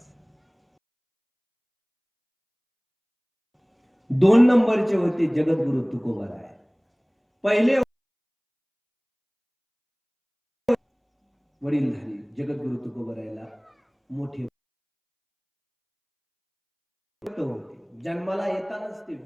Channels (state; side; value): identical; both; correlation 1.00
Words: 2 नंबरचे होते जगद्गुरु तुकोबाराय. पहिले वडीलधारी जगद्गुरु तुकोबारायला मोठे होते. जन्माला येतानाच ते